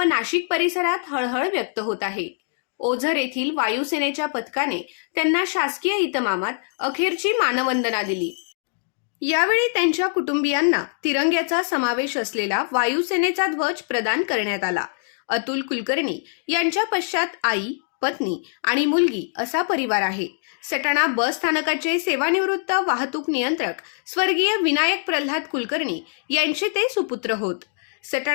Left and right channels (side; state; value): right; silent; digital silence